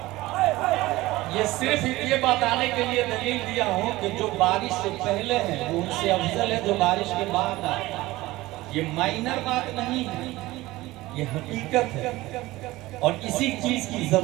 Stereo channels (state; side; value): quieter; left; 18.6 dB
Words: یہ صرف یہ بتانے کے لیے دلیل دیا ہوں کہ جو بارش سے پہلے ہیں وہ ان سے افضل ہے جو بارش کے بعد آئے۔ یہ مائنر بات نہیں ہے، یہ حقیقت ہے، اور اسی چیز کی